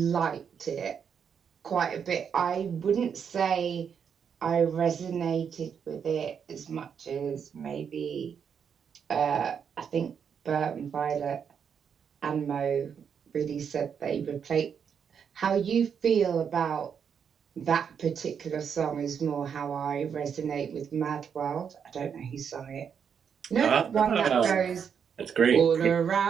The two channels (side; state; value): left; quieter; 7.3 dB